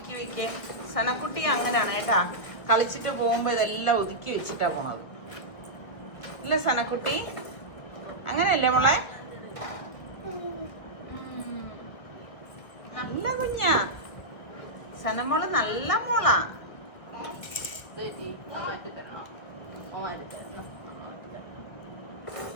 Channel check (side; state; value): right; late; 1.5 ms